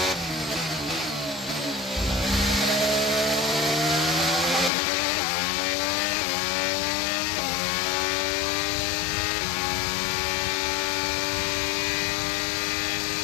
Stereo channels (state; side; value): drops out; right; at 4.7 s